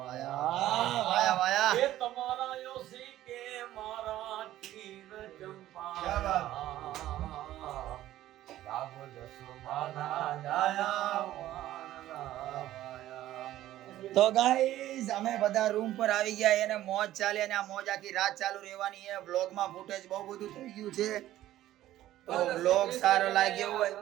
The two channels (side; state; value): left; quieter; 13.9 dB